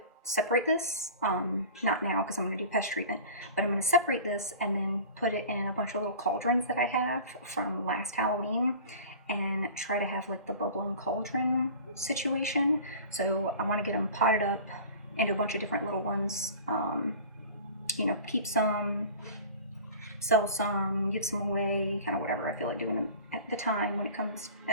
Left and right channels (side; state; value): both; inverted; correlation -0.39